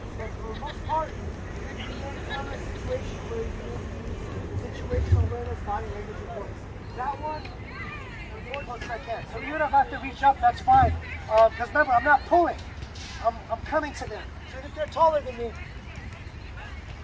But for the most part, you're in a situation where you use situational awareness, body language, and voice. That one, important as I can. So even if I have to reach up, that's fine. Because remember, I'm not pulling. I'm coming to them. So if they're taller than me,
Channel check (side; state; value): both; identical; correlation 1.00